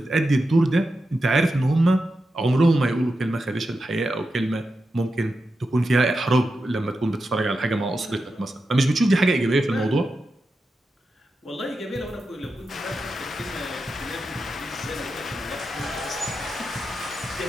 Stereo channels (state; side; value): normal; both; correlation 0.89